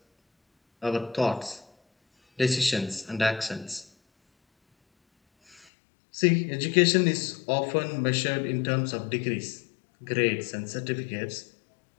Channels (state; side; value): drops out; right; at 5.7 s